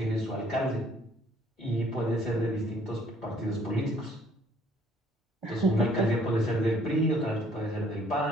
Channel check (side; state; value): both; normal; correlation 0.61